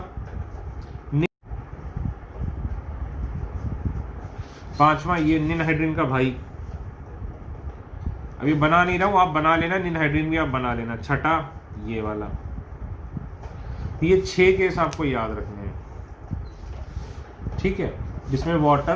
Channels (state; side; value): identical; both; correlation 1.00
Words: पांचवा ये निनहाइड्रिन का भाई, अभी बना नहीं रहा हूं, आप बना लेना, निनहाइड्रिन भी आप बना लेना। छठा ये वाला। ये 6 केस आपको याद रखने हैं, ठीक है, जिसमें